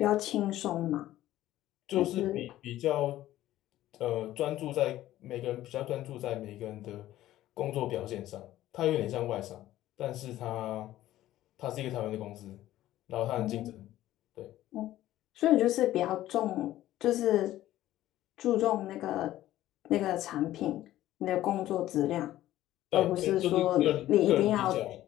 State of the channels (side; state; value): right; quieter; 14.3 dB